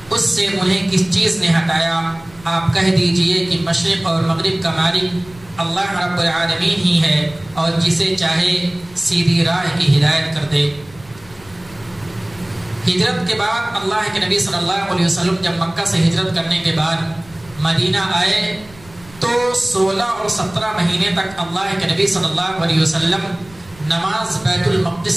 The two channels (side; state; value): right; noise; rumble, 24 dB below the sound